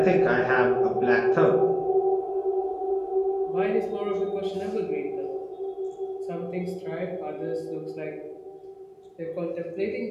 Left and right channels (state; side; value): identical; both; correlation 1.00